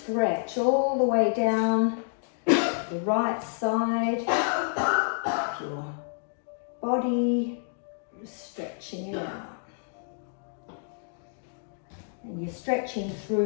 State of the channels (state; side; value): silent; right; digital silence